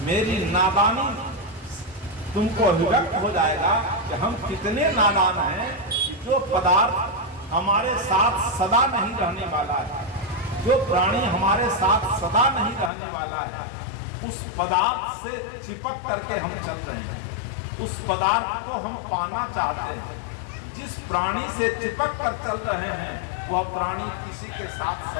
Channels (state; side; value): drops out; right; at 12.9 s